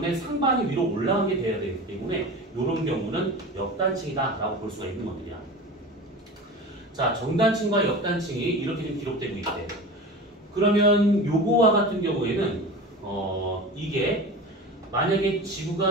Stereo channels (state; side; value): normal; both; correlation 0.32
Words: 상반이 위로 올라간 게 돼야 되기 때문에 요런 경우는 역단층이다라고 볼 수가 있는 것들이야. 자, 정단층과 역단층이 이렇게 좀 기록되고 있대. 그러면 요거와 같은 경우에는 이게 만약에